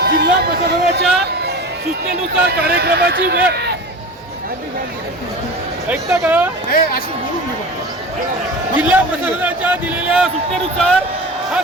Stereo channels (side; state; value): both; normal; correlation 0.33